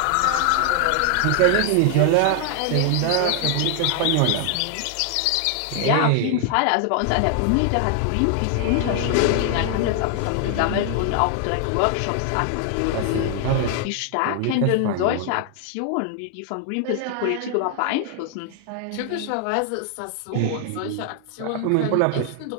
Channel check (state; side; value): different; both; correlation 0.00